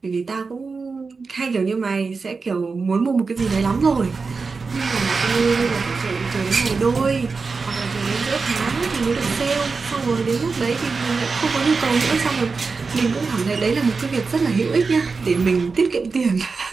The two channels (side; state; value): left; quieter; 4.5 dB